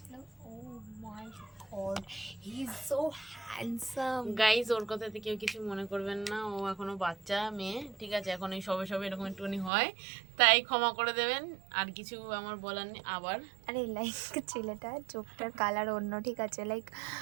oh my god, he is so handsome. Guys ওর কথাতে কেউ কিছু মনে করবেন না, ও এখনো বাচ্চা মেয়ে, ঠিক আছে, এখন এই সবে সবে এরকম একটুখানি হয়, তাই ক্ষমা করে দেবেন, আর কিছু আমার বলার নেই। আবার আরে লাইক ছেলেটা চোখটার কালার অন্য, ঠিক আছে, লাইক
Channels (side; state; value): left; drops out; at 9.7 s